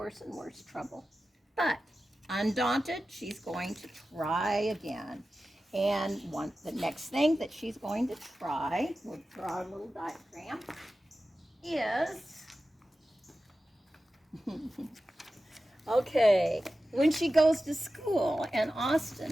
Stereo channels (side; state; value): both; normal; correlation 0.94